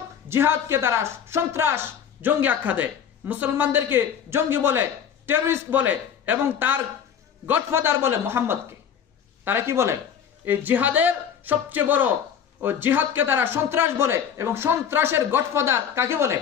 জিহাদকে তারা সন্ত্রাস, জঙ্গি আখ্যা দেয়, মুসলমানদেরকে জঙ্গি বলে, টেররিস্ট বলে, এবং তার গডফাদার বলে মুহাম্মদকে। তারা কি বলে? এই জিহাদের সবচেয়ে বড় ও জিহাদকে তারা সন্ত্রাস বলে, এবং সন্ত্রাসের গডফাদার কাকে বলে?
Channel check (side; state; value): right; quieter; 8.2 dB